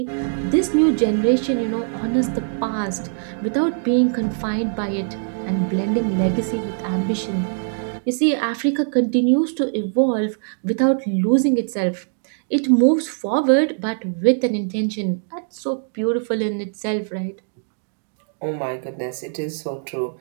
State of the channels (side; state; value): left; silent; digital silence